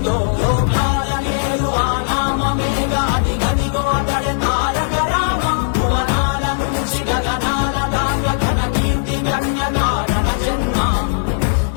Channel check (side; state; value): right; silent; digital silence